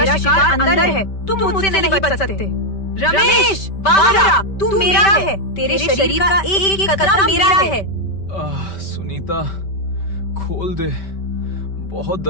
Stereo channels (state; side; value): late; right; 5.2 ms